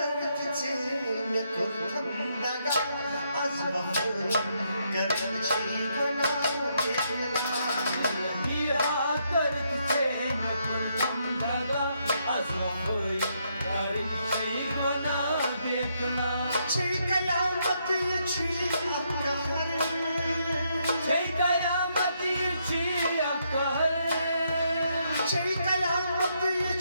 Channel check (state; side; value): inverted; both; correlation -0.76